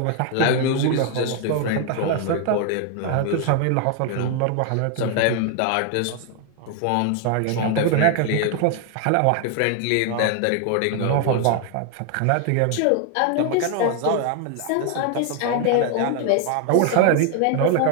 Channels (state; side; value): different; both; correlation 0.00